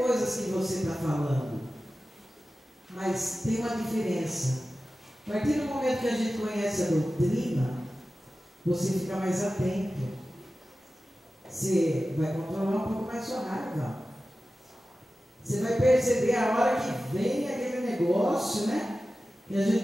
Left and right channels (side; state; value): both; normal; correlation 0.94